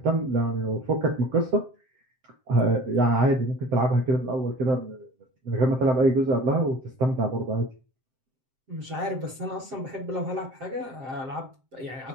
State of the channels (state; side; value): late; left; 7.7 ms